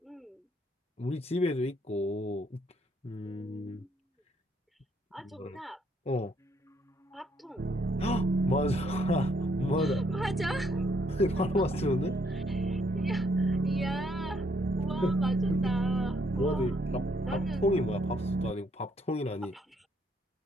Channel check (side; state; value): both; normal; correlation 0.70